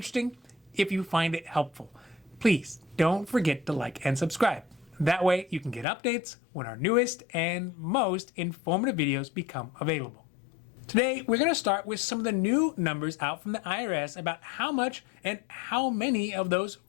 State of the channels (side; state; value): right; drops out; at 5.9 s